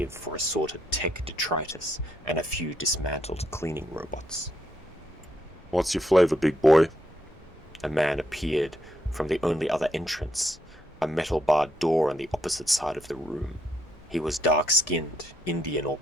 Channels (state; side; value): normal; both; correlation 0.76